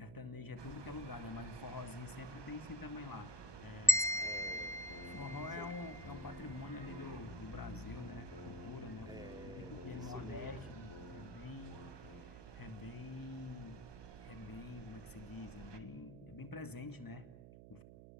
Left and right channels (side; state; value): right; noise; hum, 13 dB below the sound